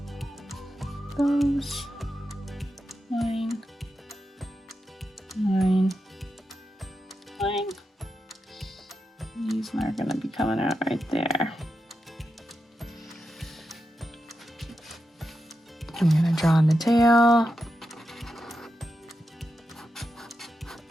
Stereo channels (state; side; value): normal; both; correlation 0.88